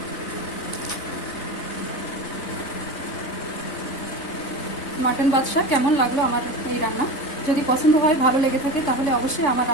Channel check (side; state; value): right; late; 3.5 ms